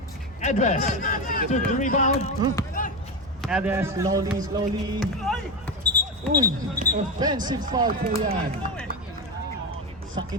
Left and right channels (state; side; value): normal; both; correlation 0.15